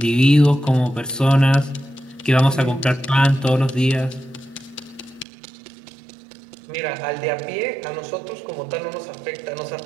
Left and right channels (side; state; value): left; drops out; at 5.2 s